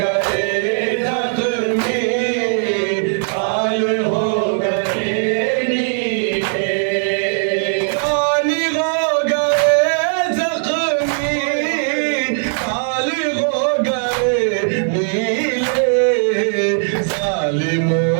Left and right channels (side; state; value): left; silent; digital silence